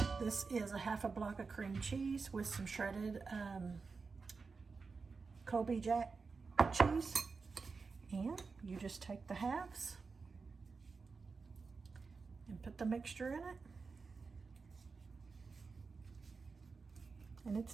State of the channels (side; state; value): left; quieter; 4.6 dB